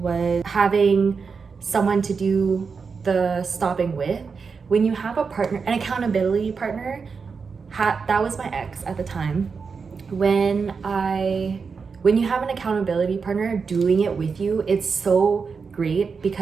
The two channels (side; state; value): left; quieter; 5.3 dB